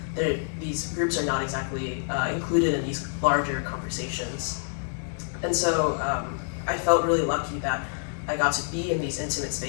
these groups are not exactly included in these larger conversations. And so I felt really lucky that I got to be in these intimate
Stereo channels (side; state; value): right; silent; 60 dB below the other